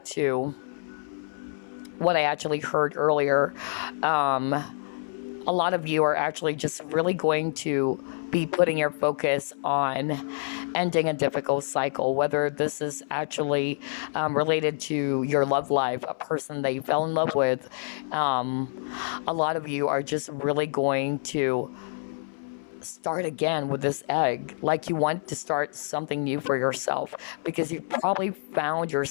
to what I actually heard earlier. A lot of you are actually just really going to be putting your focus on ending a difficult cycle, whether this is actually related to your love life, a person that you fell in love with. A lot of you are just really going to start again with this egg, like you want to start something new for yourself, because you probably found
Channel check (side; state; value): right; silent; 60 dB below the other